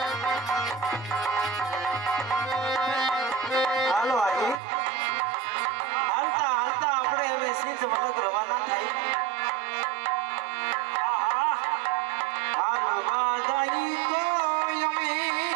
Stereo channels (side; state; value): left; drops out; at 4.6 s